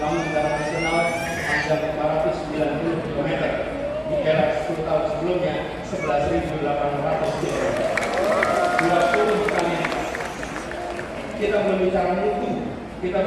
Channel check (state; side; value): identical; both; correlation 1.00